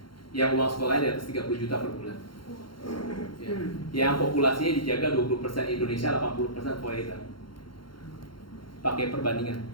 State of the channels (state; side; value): late; right; 0.73 ms